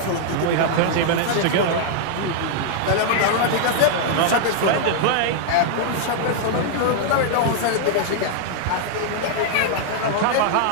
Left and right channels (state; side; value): different; both; correlation -0.01